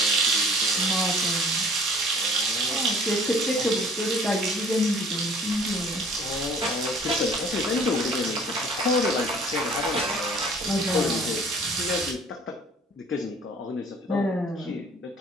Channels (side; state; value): both; normal; correlation 0.52